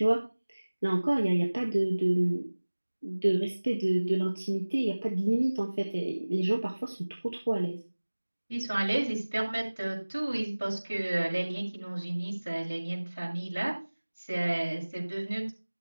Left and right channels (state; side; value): inverted; both; correlation -1.00